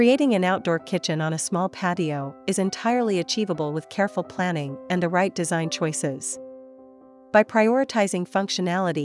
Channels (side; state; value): both; identical; correlation 1.00